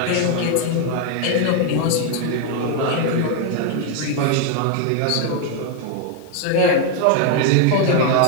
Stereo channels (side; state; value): both; different; correlation 0.00